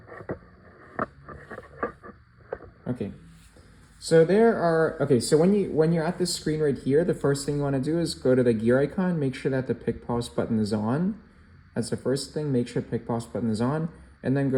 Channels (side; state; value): both; identical; correlation 1.00